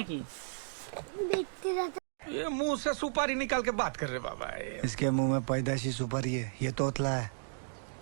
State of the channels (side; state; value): left; silent; digital silence